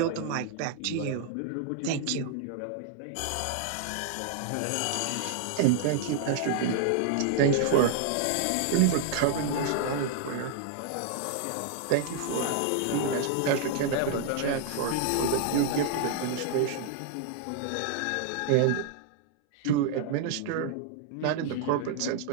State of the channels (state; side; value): different; both; correlation 0.00